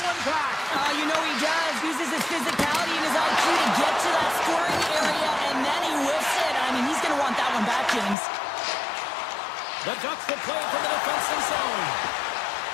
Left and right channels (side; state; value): right; drops out; at 8.2 s